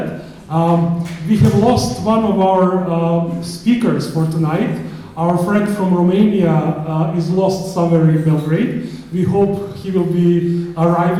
We have lost one of our speakers for tonight. Our friend from Romania is lost somewhere in Belgrade. We hope he will be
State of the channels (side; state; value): both; identical; correlation 1.00